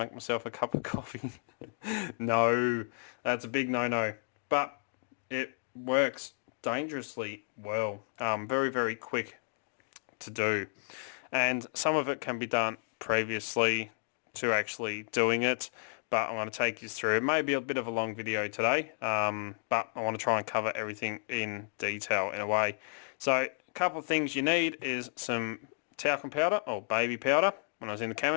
myself a cup of coffee. No, that's a big no-no. But it works dangerously well. Very quick to do. And some of it can be done previously to actually doing it, but I'm going to take you through. It may be a bit of a long video today, but I want to try and cover everything in detail in a way. So a couple of things you need is some talcum powder or baby powder. When I was in the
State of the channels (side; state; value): right; silent; digital silence